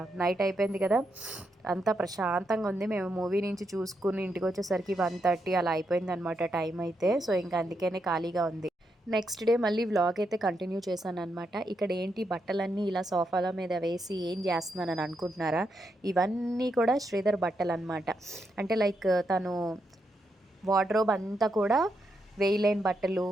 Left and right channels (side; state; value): both; normal; correlation 0.82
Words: నైట్ అయిపోయింది కదా, అంతా ప్రశాంతంగా ఉంది. మేము మూవీ నుంచి చూసుకుని ఇంటికి వచ్చేసరికి 1:30 అలా అయిపోయింది అనమాట టైం అయితే. సో ఇంకా అందుకనే ఖాళీగా ఉంది. నెక్స్ట్ డే మళ్ళీ వ్లాగ్ అయితే కంటిన్యూ చేశాను అనమాట. ఇక్కడ ఏంటి బట్టలన్నీ ఇలా సోఫాల మీద వేసి ఏం చేస్తున్నానని అనుకుంటున్నారా? ఇవన్నీ కూడా శ్రీధర్ బట్టలు అనమాట. అంటే లైక్ తను వార్డ్రోబ్ అంతా కూడా వేయలేని బట్టలు,